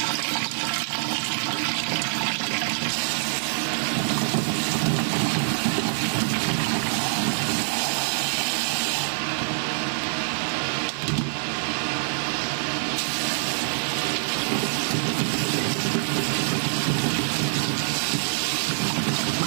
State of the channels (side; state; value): left; silent; digital silence